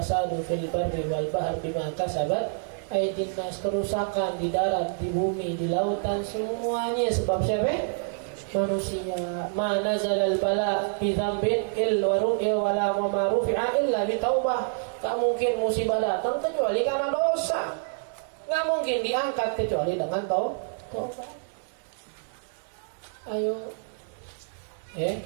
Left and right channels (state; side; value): silent; left; 58 dB below the other